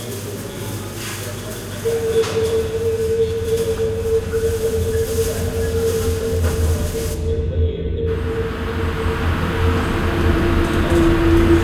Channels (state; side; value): identical; both; correlation 1.00